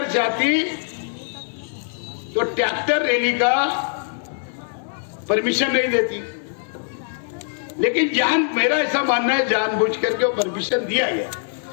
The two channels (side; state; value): right; silent; 64 dB below the other